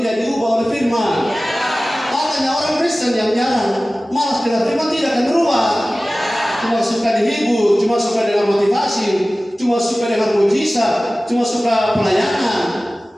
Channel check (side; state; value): both; normal; correlation 0.97